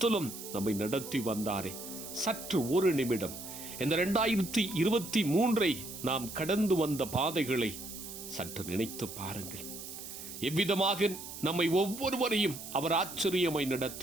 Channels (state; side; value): noise; right; hiss, 11 dB below the sound